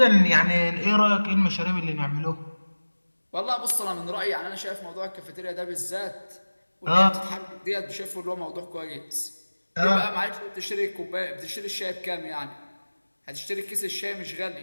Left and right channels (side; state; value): both; inverted; correlation -1.00